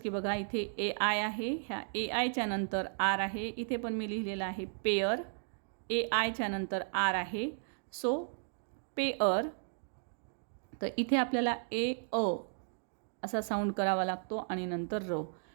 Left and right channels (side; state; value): left; silent; digital silence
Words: बघा इथे ए आय आहे, ह्या ए आयच्या नंतर आर आहे. इथे पण मी लिहिलेलं आहे पेअर, ए आयच्या नंतर आर आहे, सो पेअर. तर इथे आपल्याला ए अ असा साऊंड करावा लागतो आणि नंतर र,